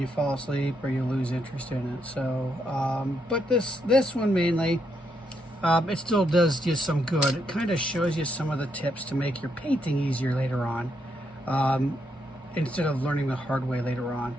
fall asleep or you lose interest in it. So but this one mainly, it still does just some good. It kind of shows you some of the tips to make your painting easier later on, instead of learning the hard way later on.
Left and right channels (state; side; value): normal; both; correlation 0.78